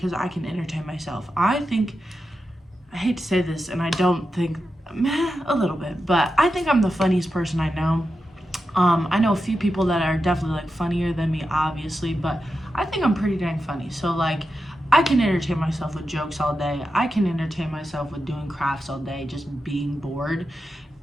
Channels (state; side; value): normal; both; correlation 0.89